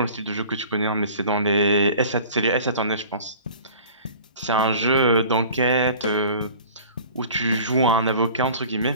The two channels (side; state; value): both; inverted; correlation -0.44